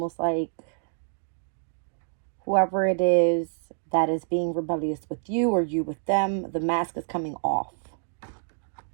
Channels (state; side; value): silent; left; digital silence